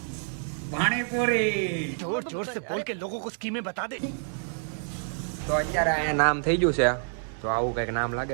પાણીપુરી જોર જોર સે બોલ કે લોકો કો સ્કીમે બતા દે. તો અત્યારે અહીંયા નામ થઈ ગયું છે. તો આવું કંઈક નામ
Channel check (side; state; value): left; silent; 59 dB below the other